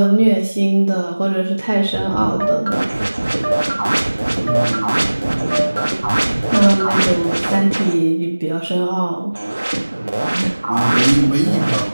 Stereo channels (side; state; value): both; inverted; correlation -1.00